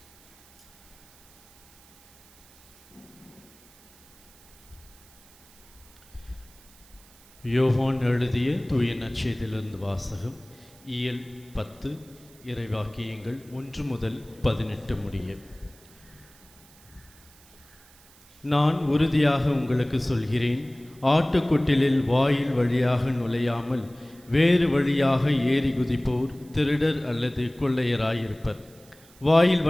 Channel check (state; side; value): noise; right; hiss, 26 dB below the sound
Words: யோவான் எழுதிய தூய நற்செய்தியிலிருந்து வாசகம். இயல் 10, இறைவாக்கியங்கள் 1 முதல் 18 முடிய. நான் உறுதியாக உங்களுக்கு சொல்கிறேன், ஆட்டுக்கொட்டிலில் வாயில் வழியாக நுழையாமல் வேறு வழியாக ஏறி குதிப்போர் திருடர் அல்லது கொள்ளையராயிருப்பர். வாயில்